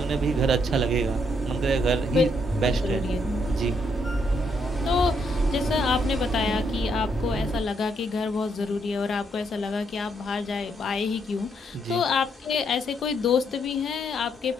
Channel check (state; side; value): normal; both; correlation 0.74